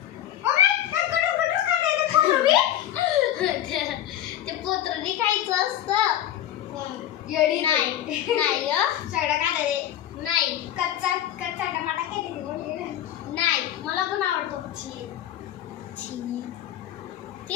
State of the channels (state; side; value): quieter; right; 11.9 dB